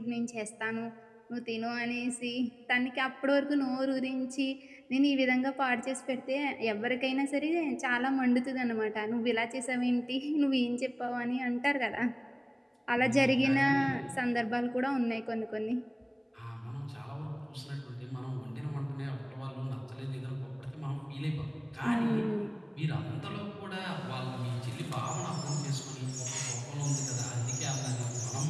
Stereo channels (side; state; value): both; identical; correlation 1.00